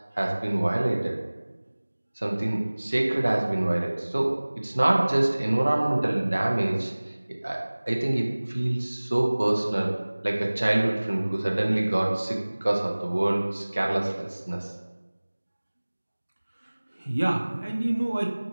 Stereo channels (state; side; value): inverted; both; correlation -1.00